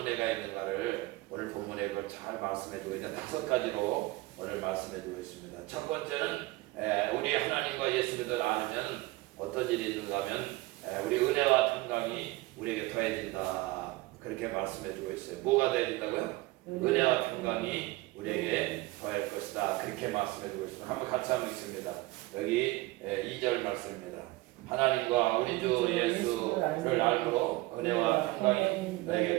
은혜가 있는가를 오늘 본문에 그걸 잘 말씀해 주고 있는 5가지로 오늘 말씀해 주고 있습니다. 첫 번째는 우리 하나님과 예수 그리스도를 알면 어떤 일이 있는가 하면 우리 은혜와 평강이 우리에게 더해진다. 그렇게 말씀해 주고 있어요. 뭐가 더해진다고요? 은혜와 평강이 우리에게 더할 것이다. 그렇게 말씀해 주고 있습니다. 한번 같이 한번 읽습니다. 여기 2절 말씀입니다. 하나님과 우리 주 예수를 알므로 은혜와 평강이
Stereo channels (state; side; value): quieter; left; 20.2 dB